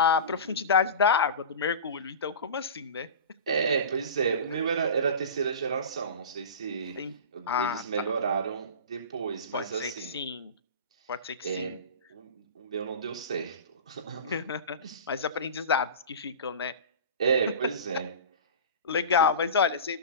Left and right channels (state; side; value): inverted; both; correlation -0.32